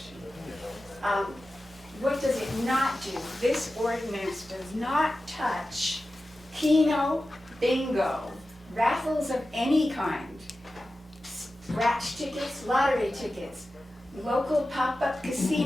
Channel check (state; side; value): normal; both; correlation 0.94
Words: What does it not do? This ordinance does not touch Keno, bingo, raffles of any kind, scratch tickets, lottery tickets, local pop-up